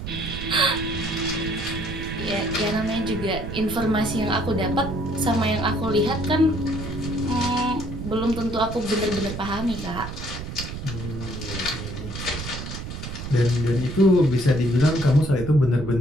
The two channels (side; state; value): right; noise; rumble, 7 dB below the sound